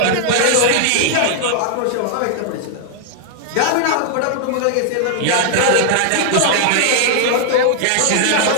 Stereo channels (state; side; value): different; both; correlation -0.01